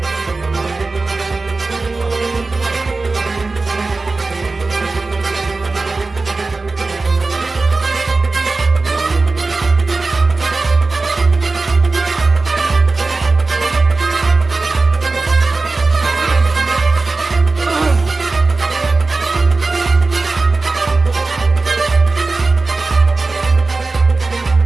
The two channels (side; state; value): left; quieter; 3.6 dB